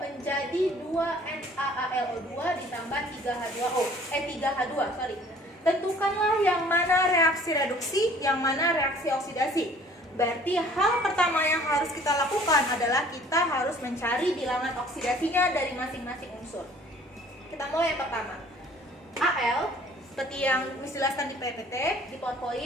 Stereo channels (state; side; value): normal; both; correlation 0.53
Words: 2NaAlO2 ditambah 3H2O. 3H2, sorry. Tentukanlah yang mana reaksi reduksi, yang mana reaksi oksidasi. Berarti hal pertama yang harus kita lakukan adalah kita harus mencari bilangan oksidasinya dari masing-masing unsur. Kita mulai yang pertama. Al, seperti yang dijelaskan di PPT, di